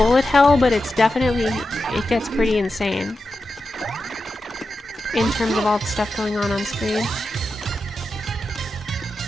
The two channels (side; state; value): both; normal; correlation 0.90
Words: hell, but it's definitely, it gets pretty insane in terms of all the stuff going on screen.